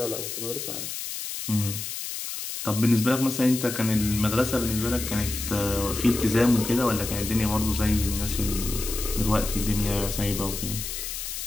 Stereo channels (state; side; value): noise; left; hiss, 6 dB below the sound